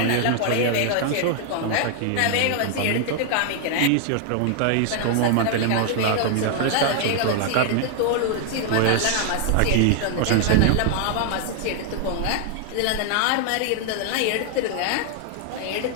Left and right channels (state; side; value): different; both; correlation 0.00